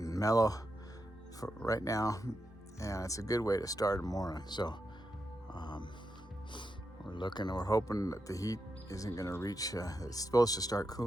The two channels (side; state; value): both; normal; correlation 0.86